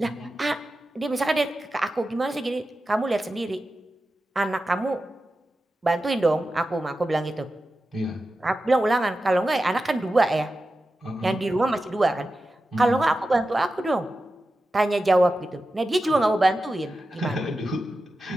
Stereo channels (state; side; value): normal; both; correlation 0.92